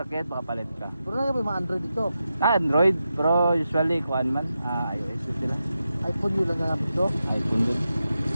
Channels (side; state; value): both; inverted; correlation -0.89